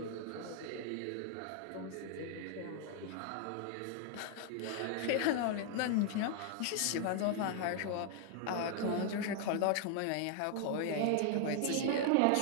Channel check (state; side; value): different; both; correlation 0.00